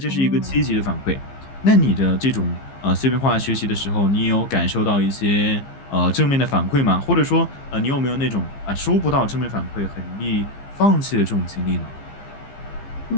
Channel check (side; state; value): right; late; 15 ms